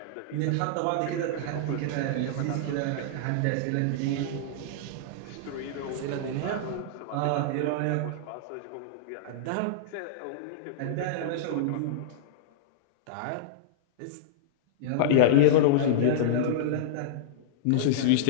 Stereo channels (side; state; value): both; different; correlation -0.02